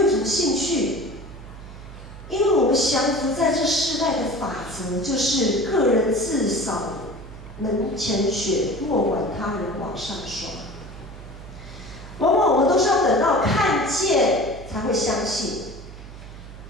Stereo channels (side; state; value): right; noise; hum, 14 dB below the sound